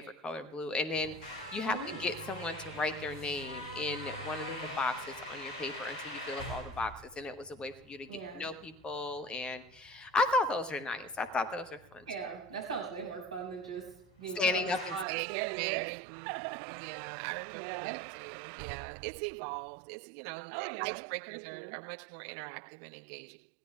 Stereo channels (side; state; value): left; drops out; at 15.1 s